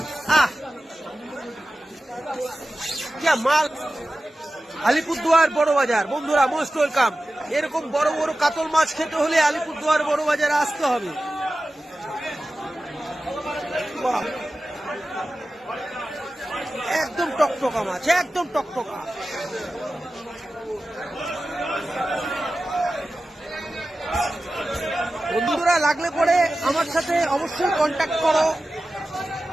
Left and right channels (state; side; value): normal; both; correlation 0.94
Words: মাল আলিপুরদুয়ার বড় বাজার বন্ধুরা, মোস্ট ওয়েলকাম। এরকম বড় বড় কাতল মাছ খেতে হলে আলিপুরদুয়ার বড় বাজারে আসতে হবে। একদম টকটকা মাছ, একদম টকটকা। বন্ধুরা লাগলে পরে আমার সাথে অবশ্যই কন্ট্যাক্ট করো,